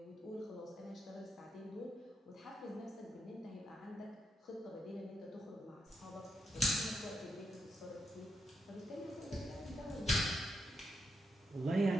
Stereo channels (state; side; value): normal; both; correlation 0.82